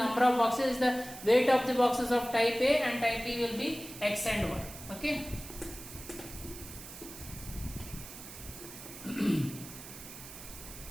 of boxes. It's the weight of the boxes of type A, and type B will be X and Y. Okay.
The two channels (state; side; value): noise; right; hiss, 13 dB below the sound